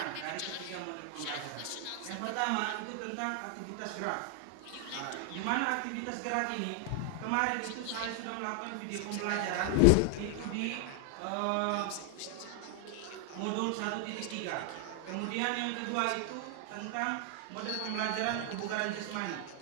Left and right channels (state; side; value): different; both; correlation 0.00